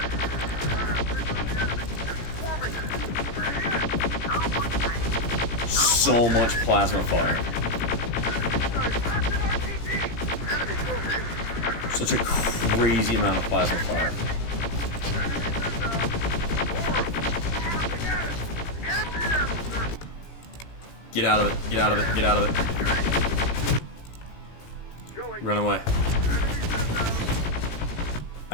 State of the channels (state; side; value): late; right; 18 ms